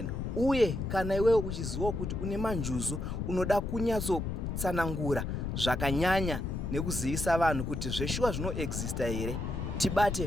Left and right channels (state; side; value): noise; left; rumble, 3 dB below the sound